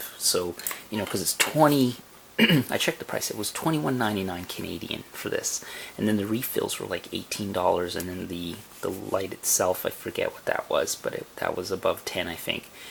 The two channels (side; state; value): both; identical; correlation 1.00